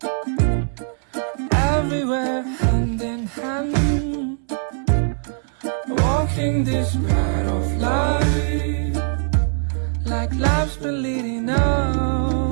everywhere hand in hand, walking this path of life like life's been leading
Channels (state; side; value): silent; left; 65 dB below the other